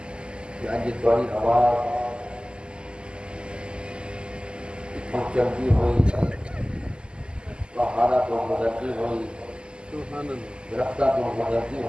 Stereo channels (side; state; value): left; late; 0.049 ms